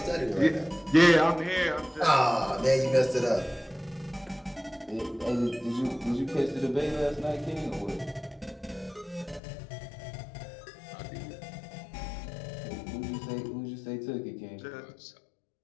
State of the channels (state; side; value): drops out; right; at 9.4 s